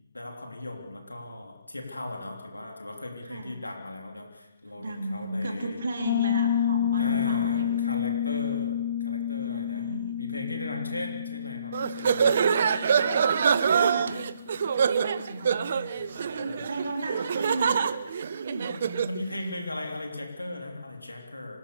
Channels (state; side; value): inverted; both; correlation -0.66